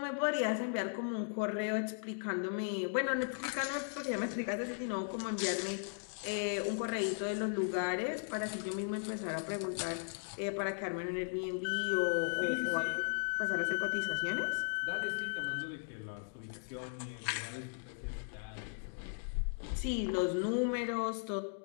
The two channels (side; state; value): right; silent; digital silence